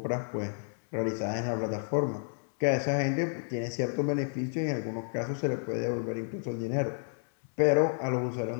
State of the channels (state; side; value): silent; right; 57 dB below the other